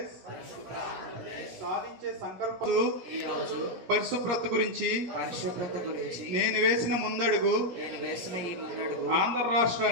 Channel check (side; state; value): left; late; 17 ms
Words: సాధించే సంకల్పం. పరిశుభ్రత గురించి నేను వేసిన ముందడుగు ఆంధ్ర